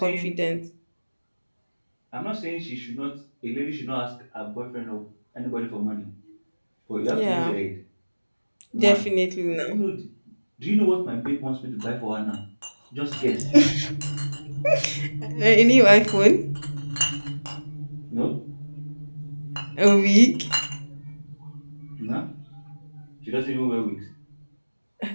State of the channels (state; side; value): inverted; both; correlation -1.00